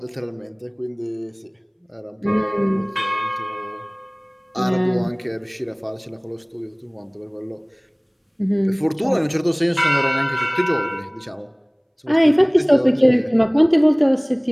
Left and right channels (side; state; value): both; identical; correlation 1.00